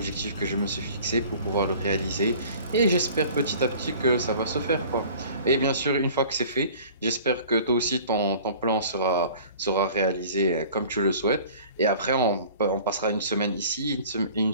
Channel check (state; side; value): inverted; both; correlation -0.47